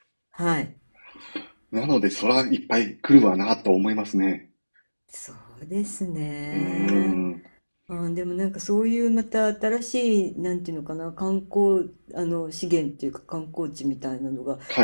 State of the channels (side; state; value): both; inverted; correlation -1.00